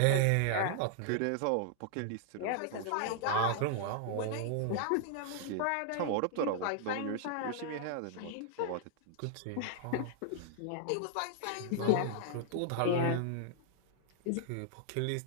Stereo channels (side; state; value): both; different; correlation -0.01